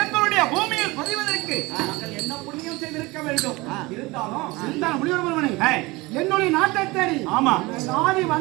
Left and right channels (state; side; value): quieter; left; 22.6 dB